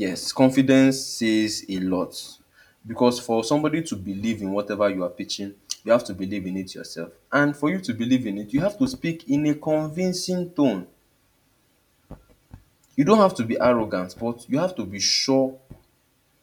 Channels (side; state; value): both; identical; correlation 1.00